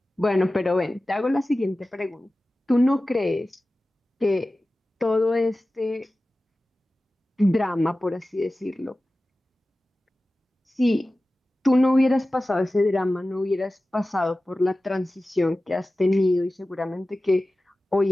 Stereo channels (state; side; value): normal; both; correlation 0.96